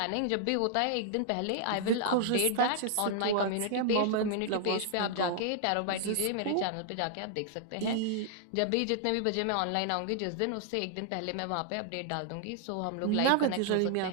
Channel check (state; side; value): different; both; correlation 0.00